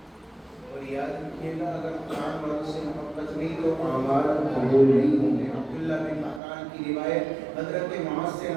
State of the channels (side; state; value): left; drops out; at 6.4 s